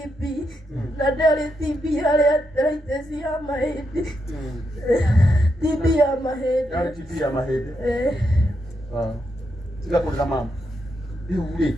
na ndarĩ TB harĩ arthritis ya mahĩndĩ. TB ya mahĩndĩ. Yarĩ TB ya mahĩndĩ. Tiga kũrĩra mama. Rĩu rĩ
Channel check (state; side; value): normal; both; correlation 0.82